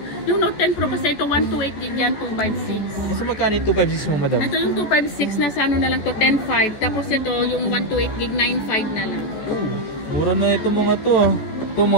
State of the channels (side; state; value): right; late; 14 ms